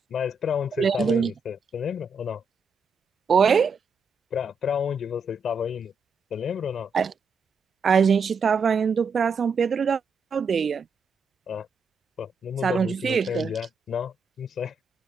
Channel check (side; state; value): left; quieter; 3.6 dB